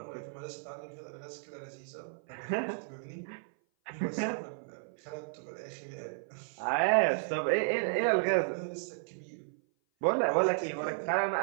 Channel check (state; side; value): silent; left; 55 dB below the other